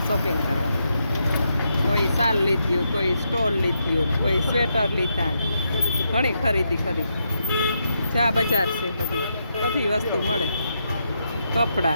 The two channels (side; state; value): both; inverted; correlation -0.82